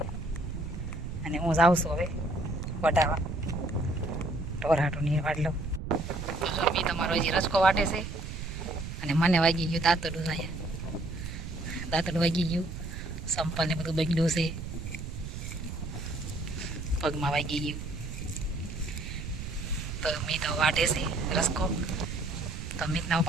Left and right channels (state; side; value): noise; right; rumble, 7 dB below the sound